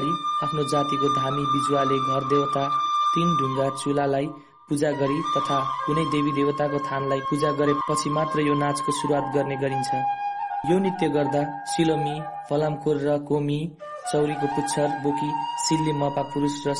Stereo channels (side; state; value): both; identical; correlation 1.00